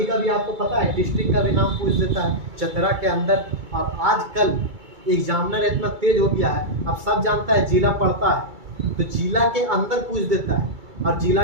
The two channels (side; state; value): left; late; 2.3 ms